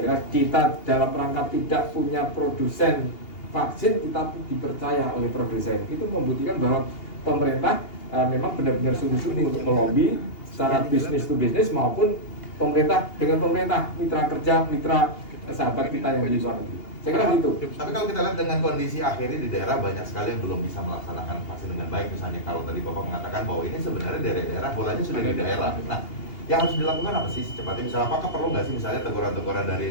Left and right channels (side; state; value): right; late; 2.8 ms